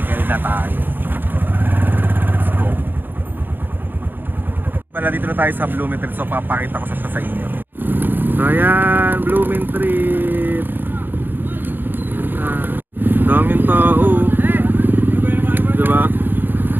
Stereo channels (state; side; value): late; left; 0.093 ms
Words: na tayo. Let's go. Pala dito na tayo sa Blooming Treat. So papakita ko sa inyo. So ayan, Blooming Treat. Daming tao. Diba?